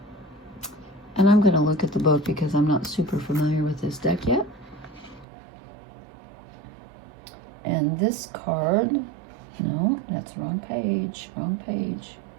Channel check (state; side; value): drops out; left; at 5.2 s